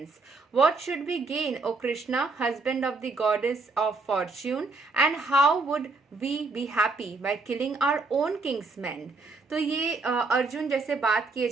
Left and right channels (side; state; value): left; quieter; 3.7 dB